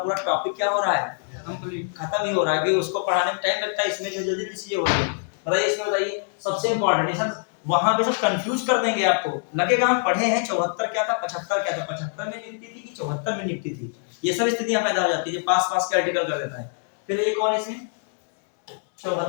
टॉपिक क्या हो रहा है? कंप्लीट, खत्म ही हो रहा है। कि उसको पढ़ाने में टाइम लगता है, इसमें जो जल्दी चीजें हो रही है। बताइए इसमें, बताइए सबसे इंपॉर्टेंट सब वहां पे सब कंफ्यूज कर देंगे आपको। लगेगा हम पढ़े हैं 74 क्या था, 75 क्या था, 75 में नियुक्ति थी कि 74 में नियुक्ति थी। ये सब स्थितियां पैदा हो जाती है जब पास पास के आर्टिकल कर देता है। फिर ये कौन इसमें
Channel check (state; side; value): silent; right; 62 dB below the other